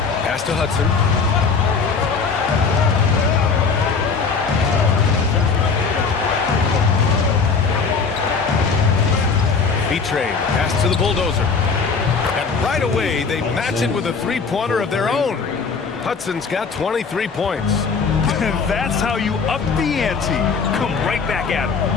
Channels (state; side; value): quieter; right; 5.1 dB